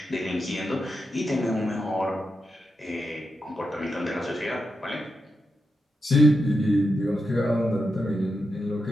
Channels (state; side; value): normal; both; correlation 0.86